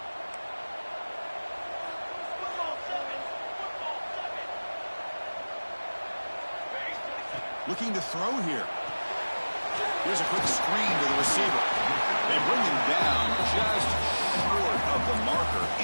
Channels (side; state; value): both; inverted; correlation -1.00